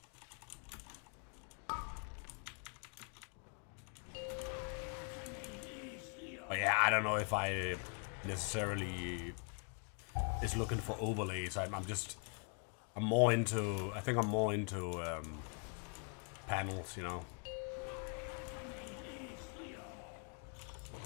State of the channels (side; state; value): right; quieter; 39.9 dB